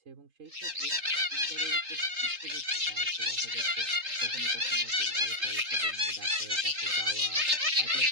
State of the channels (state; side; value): late; left; 3.8 ms